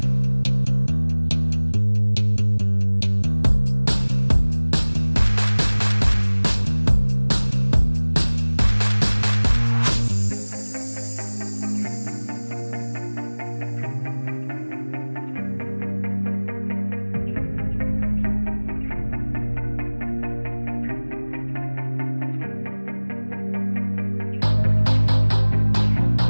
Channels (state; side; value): inverted; both; correlation -1.00